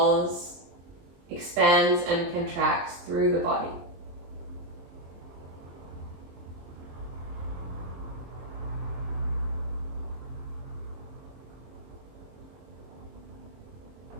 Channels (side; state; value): left; late; 23 ms